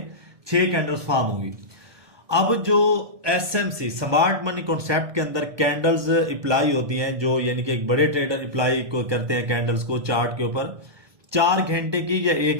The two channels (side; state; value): left; late; 1.2 ms